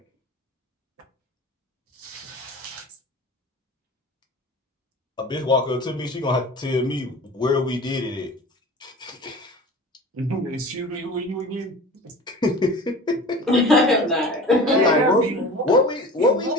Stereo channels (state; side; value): normal; both; correlation 0.38